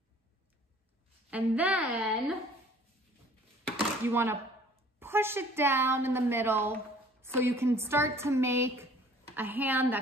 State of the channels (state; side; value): normal; both; correlation 0.53